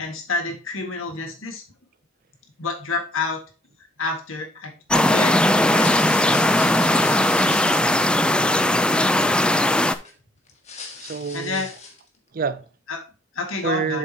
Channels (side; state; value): both; normal; correlation 0.64